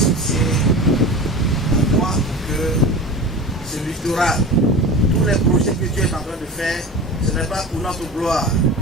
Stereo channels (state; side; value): normal; both; correlation 0.32